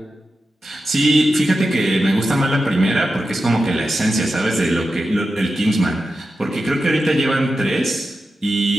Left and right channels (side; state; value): both; normal; correlation 0.91